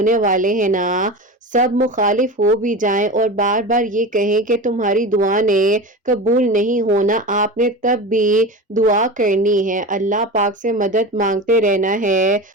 والے ہیں نا۔ سب مخالف ہو بھی جائیں اور بار بار یہ کہیں کہ تمہاری دعا نے قبول نہیں ہونا، آپ نے تب بھی دعا کرنی ہے، اللہ پاک سے مدد مانگتے رہنا ہے۔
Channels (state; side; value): normal; both; correlation 0.27